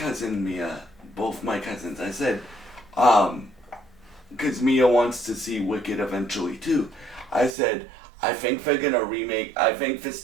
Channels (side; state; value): left; drops out; at 7.6 s